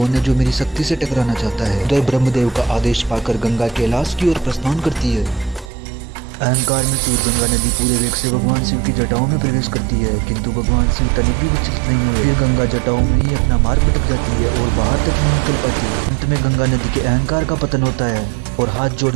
है जो मेरी शक्ति से टकराना चाहता है। तो ब्रह्मदेव का आदेश पाकर गंगा कैलाश की ओर प्रस्थान करती है। अहंकार में चूर गंगा नदी पूरे वेग से भगवान शिव की जटाओं में प्रवेश करती है, किंतु भगवान शिव तनिक भी विचलित नहीं हुए। फिर गंगा जटाओं में ही अपना मार्ग भटक जाती है और बाहर तक नहीं निकल पाती है। अंत में गंगा नदी के अहंकार का पतन होता है और हाथ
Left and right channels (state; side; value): drops out; left; at 5.7 s